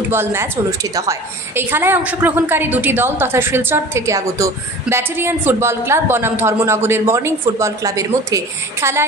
ম্যাচ অনুষ্ঠিত হয়। এই খেলায় অংশগ্রহণকারী দুটি দল তথা শিলচর থেকে আগত ব্যাটালিয়ন ফুটবল ক্লাব বনাম ধর্মনগরের মর্নিং ফুটবল ক্লাবের মধ্যে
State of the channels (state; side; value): normal; both; correlation 0.40